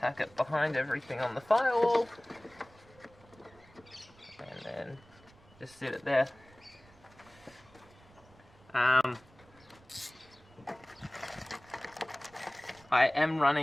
it behind everything on the firewall, and then just sit it there. I am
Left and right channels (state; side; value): noise; right; rumble, 26 dB below the sound